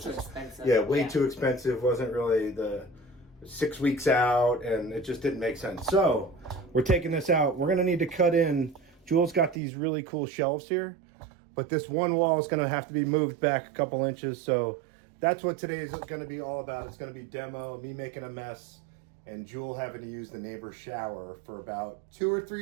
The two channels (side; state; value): left; drops out; at 9.6 s